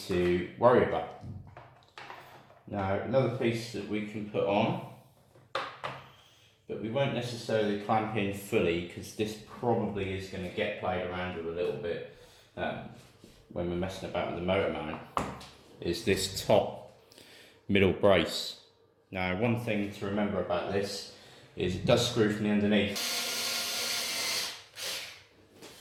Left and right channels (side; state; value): both; identical; correlation 1.00